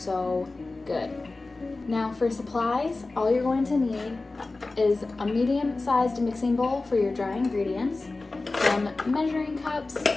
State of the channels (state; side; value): quieter; right; 3.4 dB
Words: good. Now for supplies, all you're going to need is a medium-sized mixing bowl for your dry ingredients, some measuring cups,